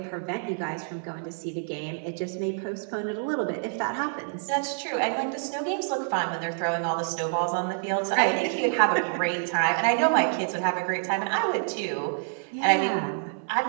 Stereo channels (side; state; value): left; silent; digital silence